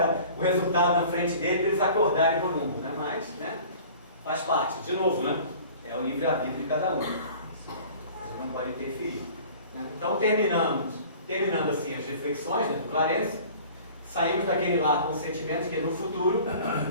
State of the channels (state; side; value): inverted; both; correlation -0.46